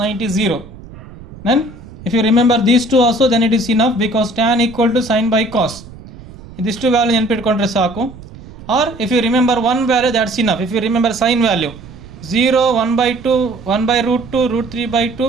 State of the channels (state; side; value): noise; right; rumble, 17 dB below the sound